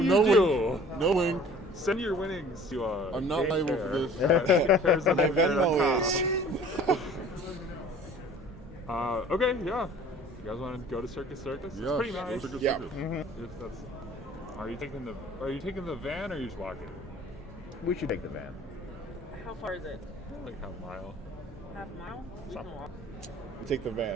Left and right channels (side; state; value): both; normal; correlation 0.49